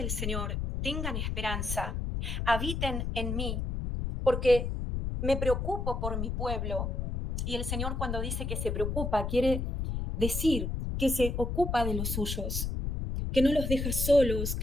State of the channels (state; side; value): noise; left; rumble, 2 dB below the sound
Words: Señor, tengan esperanza, habiten en mí, porque me preocupo por mi pueblo. Y el Señor, cuando dice que se preocupa, quiere decir que se ocupa de los suyos, que no los deja solos,